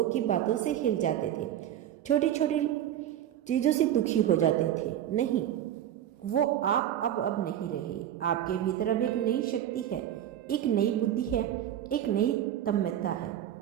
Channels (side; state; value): left; quieter; 11.3 dB